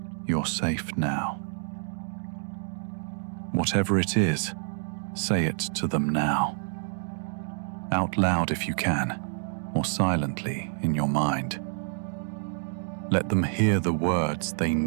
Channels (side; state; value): left; silent; digital silence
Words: you're safe now. Whatever it is, say it to them now. Out loud if you can, or silently in your mind. Let them hear the words they